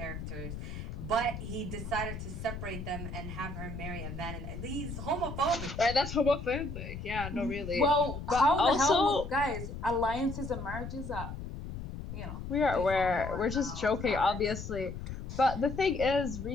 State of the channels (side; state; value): left; noise; rumble, 8 dB below the sound